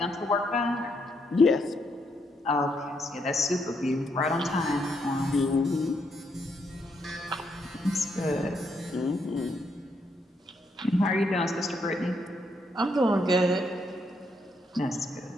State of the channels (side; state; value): both; normal; correlation 0.76